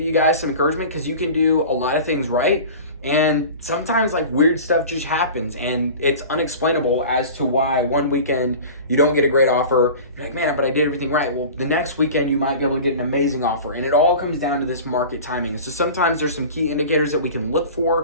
you guys some encouragement, because you can do a lot of things right. And sometimes weird stuff just happens, and it's unexplainable as to why one weekend you don't get a great offer. You're like, man, but I did everything right. Well, the next weekend you might be able to get an amazing offer, and it all comes down to this market timing. So sometimes there's some key indicators that we can look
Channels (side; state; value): both; inverted; correlation -0.37